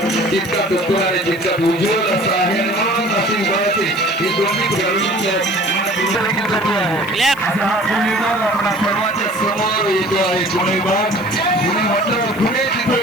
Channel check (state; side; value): noise; right; hiss, 23 dB below the sound